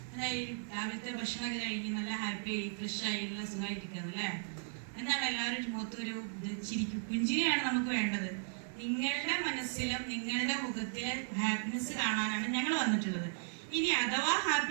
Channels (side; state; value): left; silent; digital silence